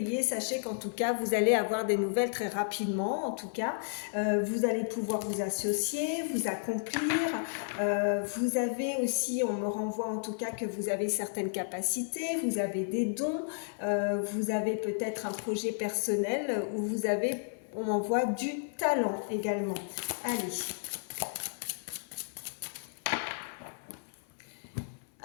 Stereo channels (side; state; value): right; silent; 56 dB below the other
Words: sachez qu'en tout cas, vous allez avoir des nouvelles très rapidement. En tout cas, vous allez pouvoir vous associer, vous accomplir. Vous avez aussi, on me renvoie en tout cas que vous avez certaines capacités, vous avez des dons, vous avez peut-être un projet personnel où vous avez, on m'envoie du talent également. Allez.